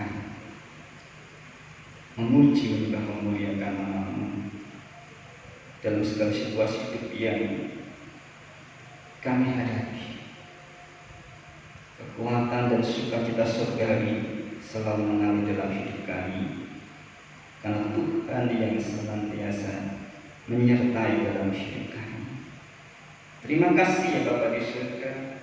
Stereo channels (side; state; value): both; identical; correlation 1.00